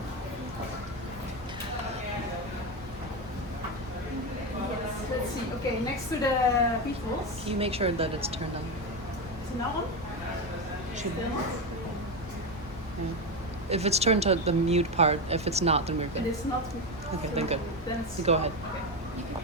Let's see. Okay, next to the beetles. Can you make sure that it's turned on? Is it that one? Should Still not? yeah. If it's turned to the mute part, if it's not, then we're It good. is not. Okay, then good. Then it's, You go ahead. okay. You can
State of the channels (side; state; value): both; normal; correlation 0.14